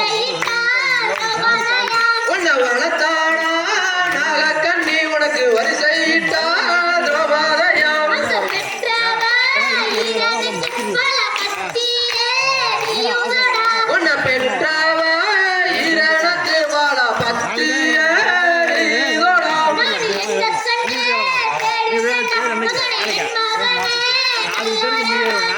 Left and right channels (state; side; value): identical; both; correlation 1.00